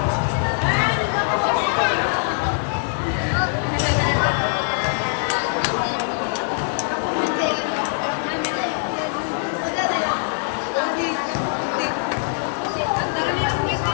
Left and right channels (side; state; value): right; silent; 64 dB below the other